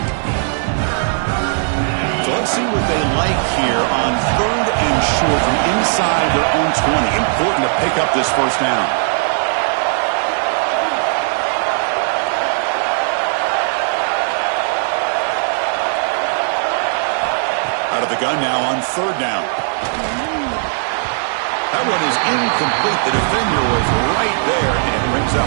So let's see what they like here on 3rd and short from inside their own 20. Important to pick up this 1st down. Out of the gun now on 3rd down. That one is incomplete. The defender was right there, and it brings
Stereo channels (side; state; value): left; silent; digital silence